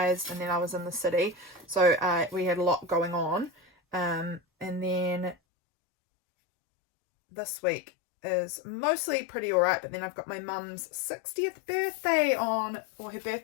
and then I was in the city, so we had a lot going on, and then this week is mostly pretty alright, but then I've got my mum's 60th birthday on, or her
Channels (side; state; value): right; drops out; at 5.4 s